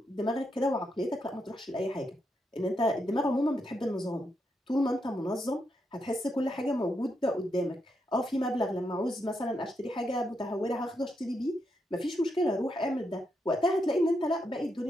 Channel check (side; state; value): both; normal; correlation 0.82